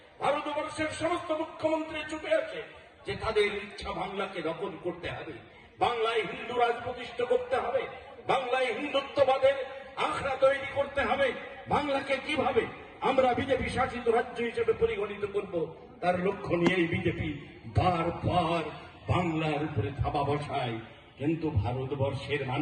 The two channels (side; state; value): both; identical; correlation 1.00